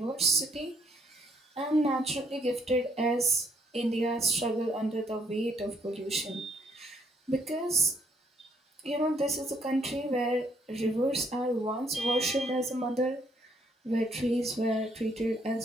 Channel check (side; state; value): both; normal; correlation 0.69